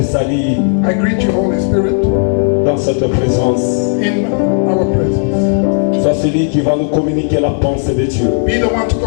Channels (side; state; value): right; silent; 56 dB below the other